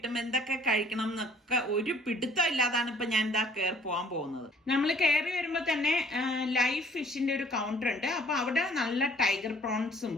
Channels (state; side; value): normal; both; correlation 0.56